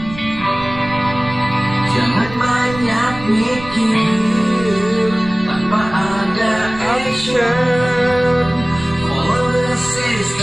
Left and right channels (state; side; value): noise; right; rumble, 14 dB below the sound